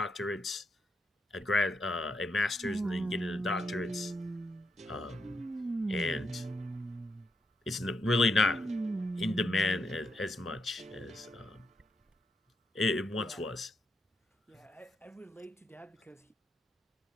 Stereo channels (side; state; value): both; normal; correlation 0.81